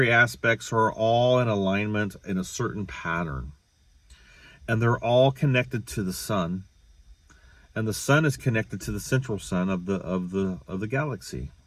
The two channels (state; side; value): identical; both; correlation 1.00